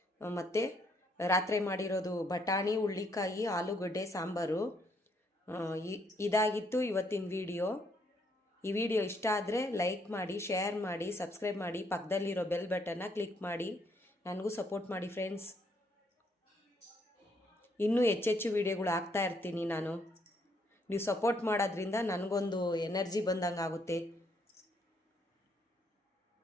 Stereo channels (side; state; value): both; normal; correlation 0.71